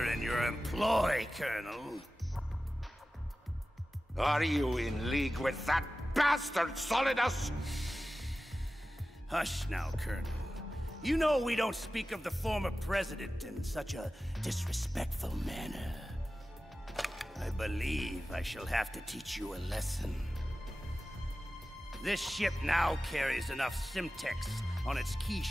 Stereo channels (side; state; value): both; normal; correlation 0.95